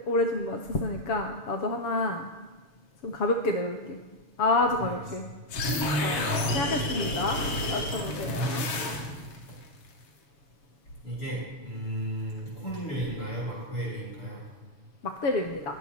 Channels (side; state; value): right; late; 7.3 ms